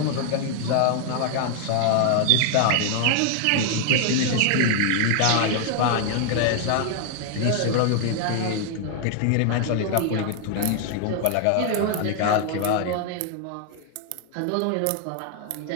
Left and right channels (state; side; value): different; both; correlation 0.00